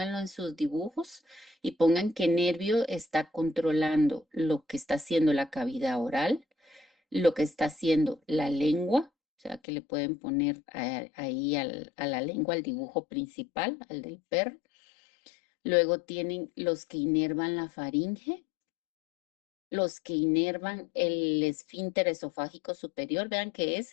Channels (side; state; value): right; drops out; at 9.6 s